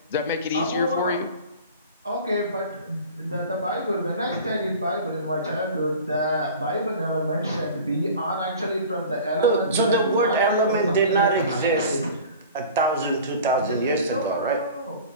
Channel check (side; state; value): both; inverted; correlation -0.40